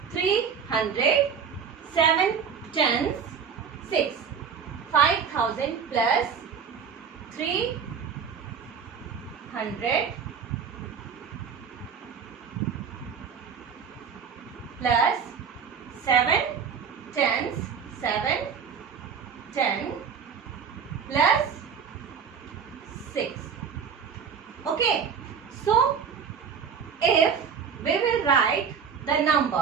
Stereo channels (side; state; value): left; quieter; 6.7 dB